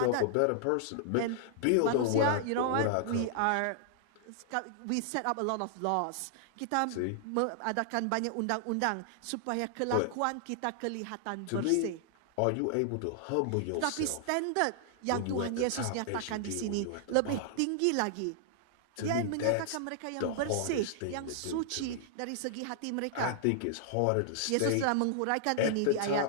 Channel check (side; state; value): both; different; correlation -0.01